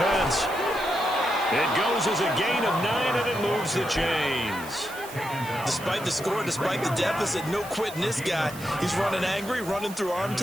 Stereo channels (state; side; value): noise; right; hiss, 15 dB below the sound